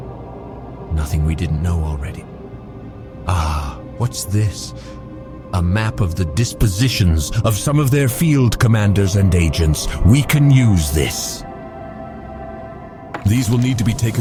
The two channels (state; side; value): identical; both; correlation 1.00